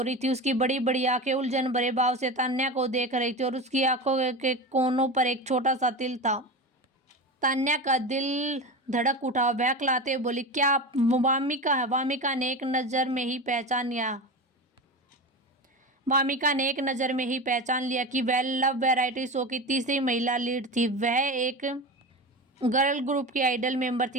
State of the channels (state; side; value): normal; both; correlation 0.25